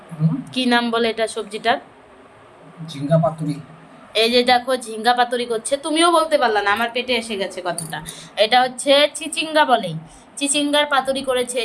কি নাম বলে এটা সবজিটার? ঝিঙ্গা পাতুরি। এই যে দেখো ঝিঙ্গা পাতুরি করছে, তুমিও বলতে পারলা না, আমার পেটে এসে গেছে কথাটা। এটা হচ্ছে চিচিঙ্গা বলে, চিচিঙ্গার পাতুরি করেছে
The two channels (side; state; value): both; identical; correlation 1.00